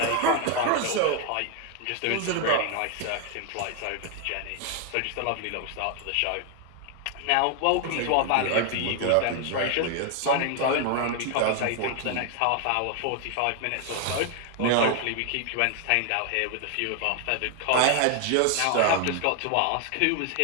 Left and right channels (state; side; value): different; both; correlation 0.00